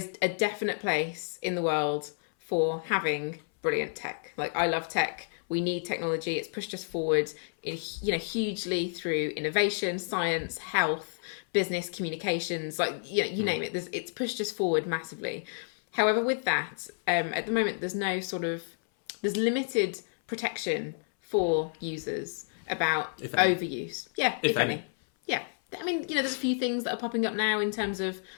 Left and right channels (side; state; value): right; silent; 58 dB below the other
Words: a definite place in the world for having brilliant tech. Like, I love tech. We need technology. It's pushed us forward hugely through innovation, science, health, business, communications, you name it. It's pushed us forward massively. However, with that, at the moment, there's limited protection for users about overuse. Yeah, if any. Yeah. I mean, there's a few things that are popping up now in terms of